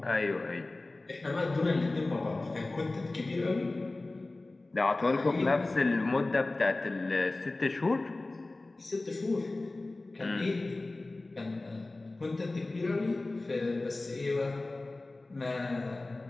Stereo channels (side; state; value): right; quieter; 3.0 dB